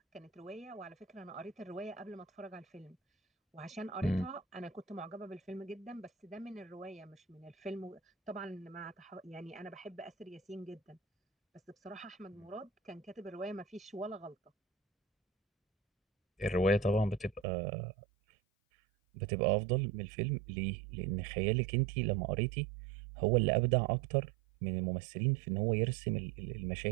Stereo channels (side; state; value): left; drops out; at 17.4 s